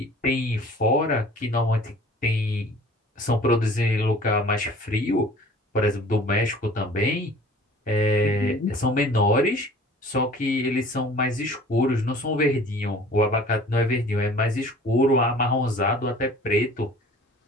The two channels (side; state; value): both; normal; correlation 0.48